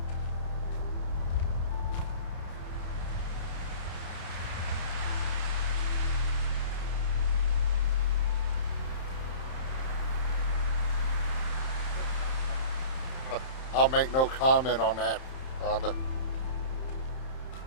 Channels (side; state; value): right; late; 31 ms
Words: I'll make no comment on that, Rhondah.